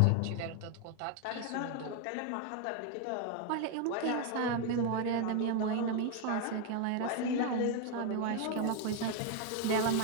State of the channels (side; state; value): both; different; correlation 0.01